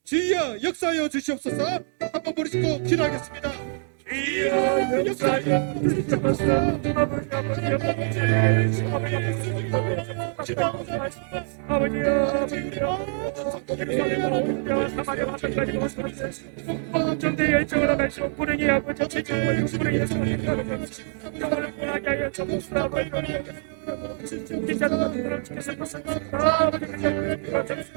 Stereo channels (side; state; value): left; silent; 58 dB below the other